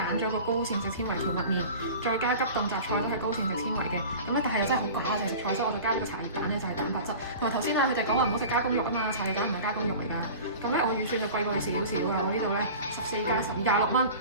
咗個高膳食纖維蕎麥麵，再加急凍雜菜都係高膳食纖維嘅。咁咧，但係又真係好寡就係食菜，所以我就加咗個茶葉蛋咧，就係蛋白質。同埋頭先啊，佢哋講話唔好食加工肉啊嘛，茶葉蛋唔係加工肉嚟㗎。咁咧，我預算就貴過你少少㗎。我呢度咧14加12 26蚊，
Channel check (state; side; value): inverted; both; correlation -0.37